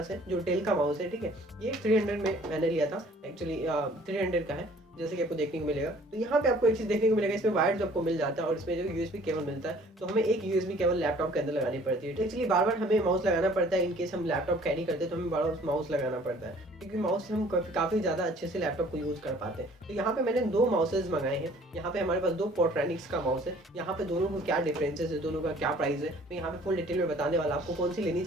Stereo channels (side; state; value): both; normal; correlation 0.54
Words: है जो डेल का माउस है, ठीक है। ये 300 में मैंने लिया था, एक्चुअली 300 का है जैसे कि आपको देखने को मिलेगा। तो यहाँ पे आपको एक चीज़ देखने को मिलेगा, इसमें वायर जो आपको मिल जाता है और इसमें जो यूएसबी केबल मिलता है, तो हमें एक यूएसबी केबल लैपटॉप के अंदर लगानी पड़ती है। तो एक्चुअली बार बार हमें माउस लगाना पड़ता है, इनकेस हम लैपटॉप कैरी करते हैं तो हमें बार बार माउस लगाना पड़ता है, क्योंकि माउस से हम काफ़ी ज़्यादा अच्छे से लैपटॉप को यूज़ कर पाते हैं। तो यहाँ पे मैंने दो माउसेज मंगाए हैं। यहाँ पे हमारे पास दो पोर्ट्रैनिक्स का माउस है। यहाँ पे दोनों को क्या डिफरेंसेस है, दोनों का क्या प्राइस है, मैं यहाँ पे फुल डिटेल में बताने वाला आपको कौन सी लेनी